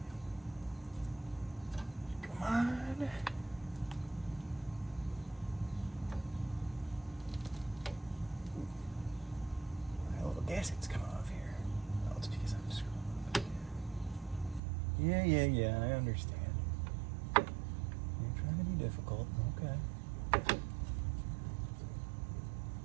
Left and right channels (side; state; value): left; drops out; at 14.6 s